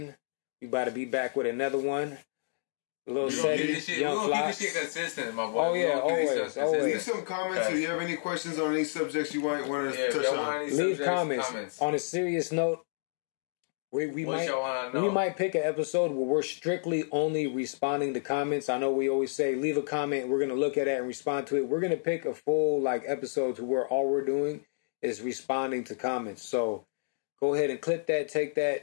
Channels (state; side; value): silent; right; digital silence